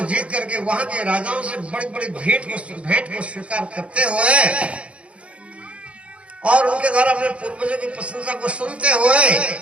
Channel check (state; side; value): late; left; 0.062 ms